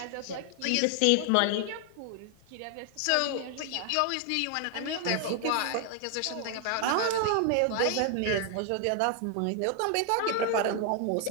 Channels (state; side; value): different; both; correlation 0.00